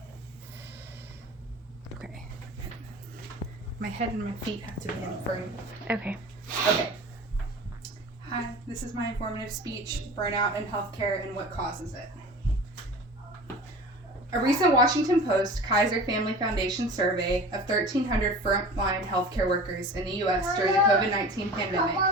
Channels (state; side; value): normal; both; correlation 0.38